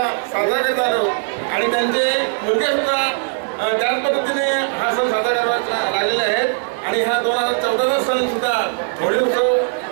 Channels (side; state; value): left; silent; 59 dB below the other